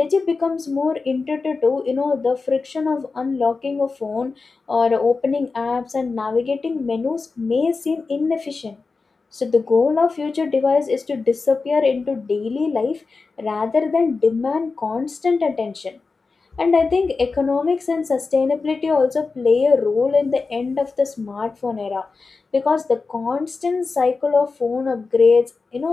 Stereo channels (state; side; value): quieter; right; 4.2 dB